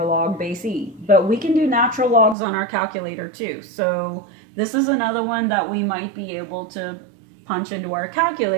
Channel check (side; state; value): left; drops out; at 2.4 s